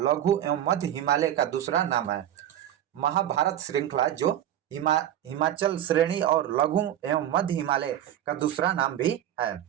एवं मध्य हिमालय का दूसरा नाम है। महाभारत श्रृंखला जो हिमाचल श्रेणी और लघु एवं मध्य हिमालय का दूसरा नाम भी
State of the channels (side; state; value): left; quieter; 11.4 dB